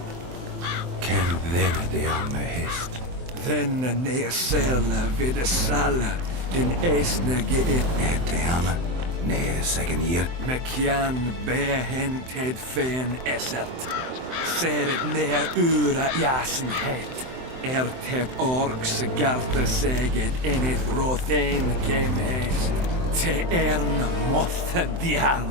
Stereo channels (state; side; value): late; left; 23 ms